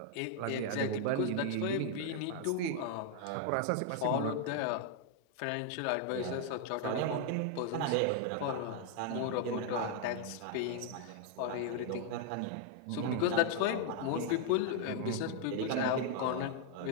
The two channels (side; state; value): both; different; correlation 0.00